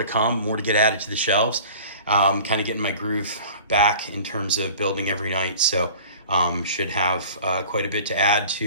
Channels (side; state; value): both; inverted; correlation -0.43